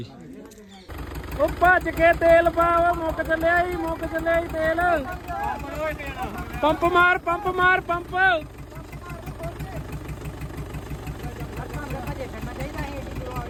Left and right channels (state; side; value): identical; both; correlation 1.00